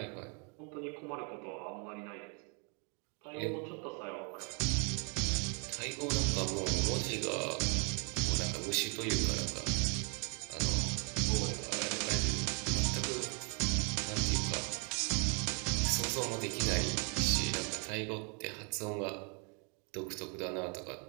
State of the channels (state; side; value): quieter; left; 35.9 dB